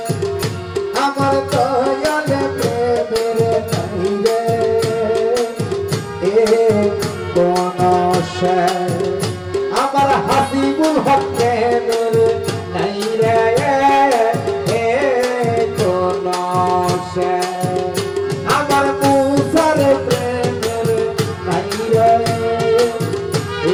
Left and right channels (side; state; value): both; identical; correlation 1.00